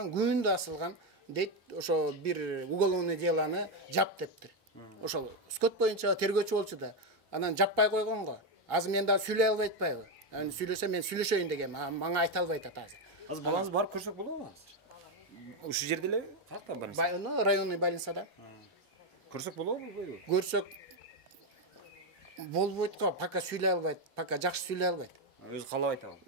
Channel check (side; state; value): both; normal; correlation 0.07